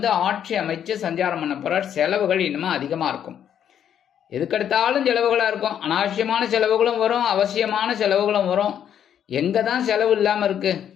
ஆட்சி அமைச்சு சஞ்சாரம் பண்ண போறார். செலவுகள் இன்னும் அதிகமா இருக்கும். எதுக்கெடுத்தாலும் செலவுகளா இருக்கும். அனாவசியமான செலவுகளும் வரும், அவசியமான செலவுகளும் வரும். எங்க தான் செலவு இல்லாம இருக்கு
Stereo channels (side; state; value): right; quieter; 9.3 dB